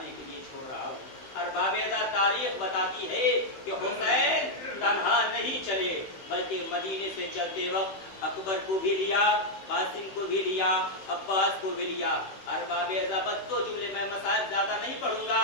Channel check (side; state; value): right; late; 16 ms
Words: کے لیے چھوڑ رہا ہوں۔ ارباب اعزاز، تاریخ بتاتی ہے کہ حسین تنہا نہیں چلے، بلکہ مدینے سے چلتے وقت اکبر کو بھی لیا، قاسم کو بھی لیا، عباس کو بھی لیا۔ ارباب اعزاز، دو جملے، میں مسائل زیادہ نہیں پڑھوں گا۔